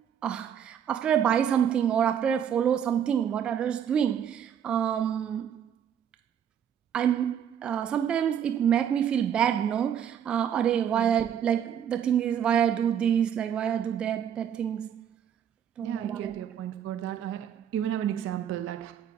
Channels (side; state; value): left; quieter; 8.9 dB